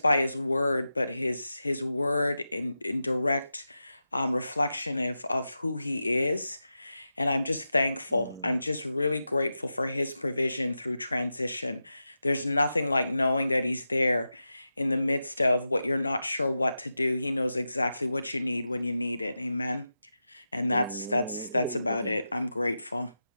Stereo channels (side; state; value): both; inverted; correlation -0.91